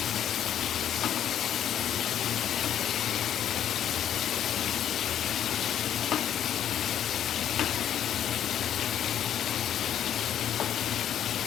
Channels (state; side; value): quieter; right; 10.1 dB